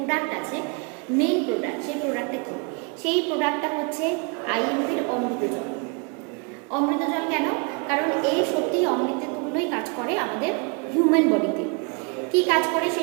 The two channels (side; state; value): left; quieter; 34.4 dB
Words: আছে, মেইন প্রোডাক্ট, সেই প্রোডাক্টটা কী? সেই প্রোডাক্টটা হচ্ছে আইএমপির অমৃত জল। অমৃত জল কেন? কারণ এই সত্যিই অমৃতের তুল্যই কাজ করে আমাদের হিউম্যান বডিতে। কী কাজ করে সে